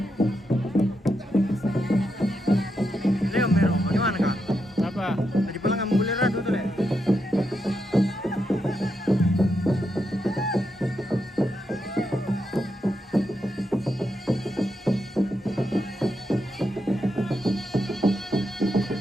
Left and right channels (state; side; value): normal; both; correlation 0.83